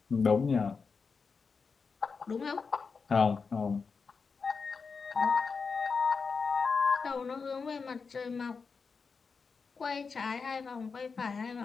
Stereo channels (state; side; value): quieter; right; 5.1 dB